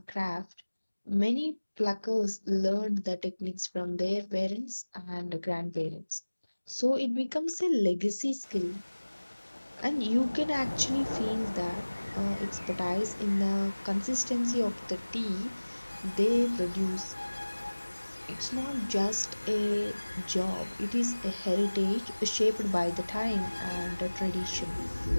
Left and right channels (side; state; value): both; inverted; correlation -1.00